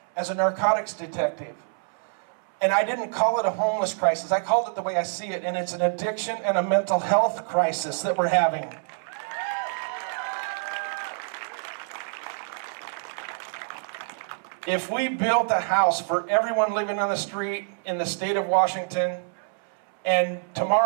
as a narcotics detective. And I didn't call it a homeless crisis. I called it the way I see it, and it's an addiction and a mental health crisis that we're having. If we built a house for everyone living on the street in the state of Washington, and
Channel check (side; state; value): left; silent; 61 dB below the other